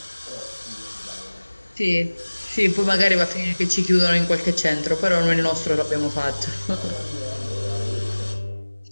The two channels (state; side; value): inverted; both; correlation -1.00